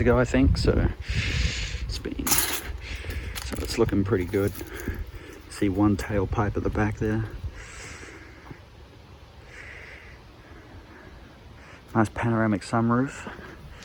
ago, I think, so it's looking pretty good. See one tailpipe at the back there. Nice panoramic sunroof.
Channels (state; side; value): identical; both; correlation 1.00